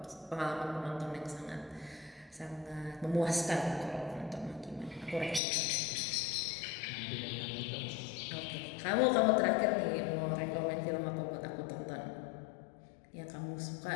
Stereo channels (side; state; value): right; drops out; at 5.4 s